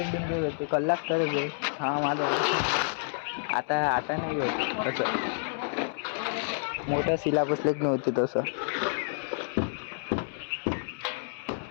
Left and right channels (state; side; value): silent; right; 58 dB below the other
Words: होते कलाक करत आहे हा माझा आता नाही होत तसं मोठं सिलेबस लेख नव्हते तसं